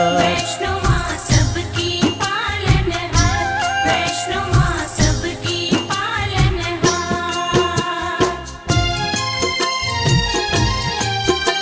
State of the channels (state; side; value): identical; both; correlation 1.00